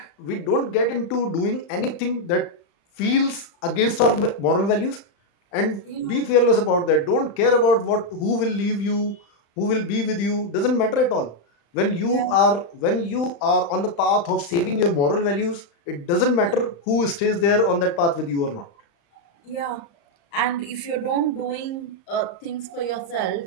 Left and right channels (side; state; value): right; late; 35 ms